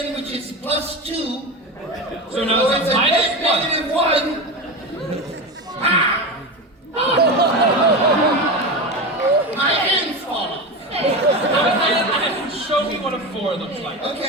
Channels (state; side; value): normal; both; correlation 0.22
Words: which is +2. So now it's a minus 1. -1. My hand's falling. Go ahead and show me what a 4 looks like.